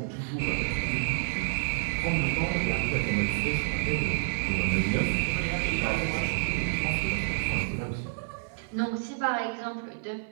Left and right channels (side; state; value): left; silent; digital silence